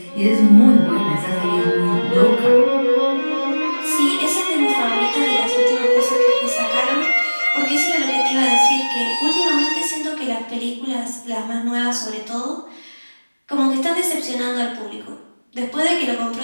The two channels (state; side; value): inverted; both; correlation -1.00